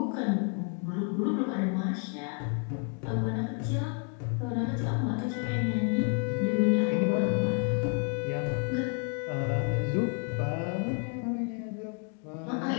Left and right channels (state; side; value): quieter; right; 37.0 dB